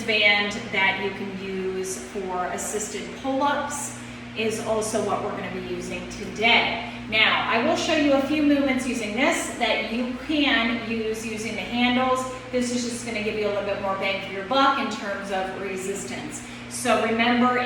band that you can use for assisted pull-ups is also what we're going to be using today. Now, I will show you a few movements using this that you can use using the handles. This is just going to give you a little bit more bang for your buck in terms of resistance. So remember,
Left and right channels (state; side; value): identical; both; correlation 1.00